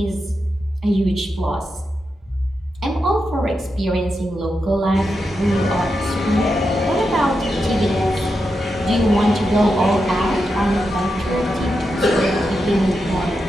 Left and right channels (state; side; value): normal; both; correlation 0.87